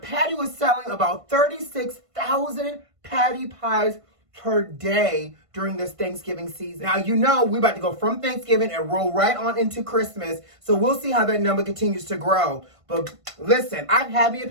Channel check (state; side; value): late; left; 1.5 ms